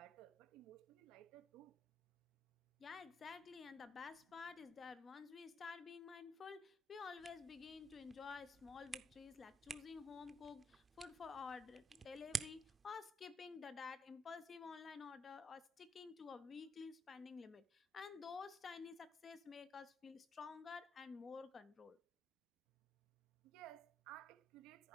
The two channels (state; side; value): normal; both; correlation 0.80